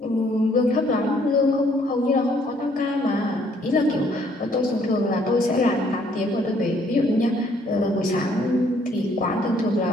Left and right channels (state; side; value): normal; both; correlation 0.64